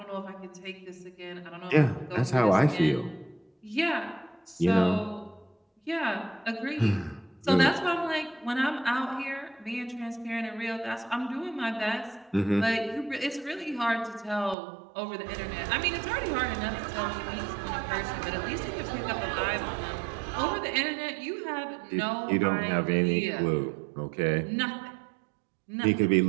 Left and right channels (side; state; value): left; drops out; at 14.6 s